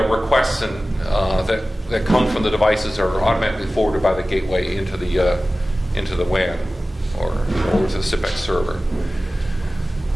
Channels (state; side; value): normal; both; correlation 0.96